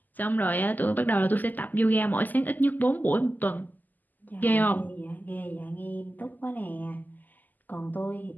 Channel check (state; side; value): late; right; 0.084 ms